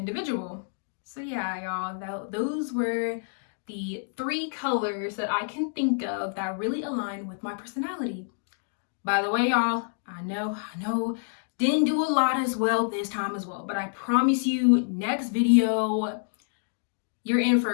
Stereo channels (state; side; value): silent; right; digital silence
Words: So yeah, y'all, those were the 3 colors that I can think of that really align with my personality. By the way, y'all, I know, didn't do a lot as well this time as well, but I promise you, next video, you're in